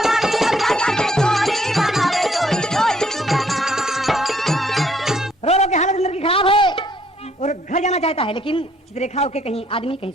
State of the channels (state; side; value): normal; both; correlation 0.66